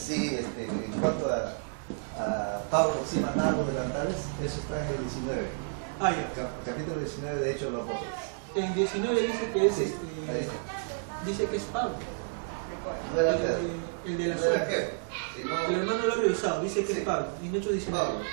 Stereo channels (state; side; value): silent; left; digital silence